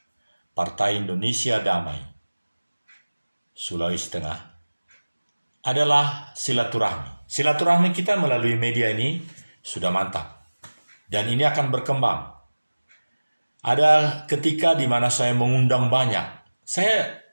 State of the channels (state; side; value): inverted; both; correlation -1.00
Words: Partai Indonesia Damai Sulawesi Tengah adalah silaturahmi. Silaturahmi kita melalui media ini sudah mantap. Dan ini akan berkembang. Ada ketika di mana saya mengundang banyak.